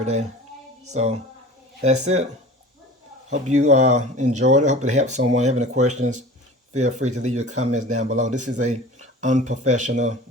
day. So that's it. Hope you enjoyed it. Hope it helped someone. Have any questions, feel free to leave your comments down below. This is a unprofessional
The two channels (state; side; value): normal; both; correlation 0.39